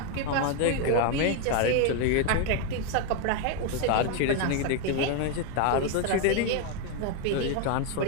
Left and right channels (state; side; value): different; both; correlation 0.01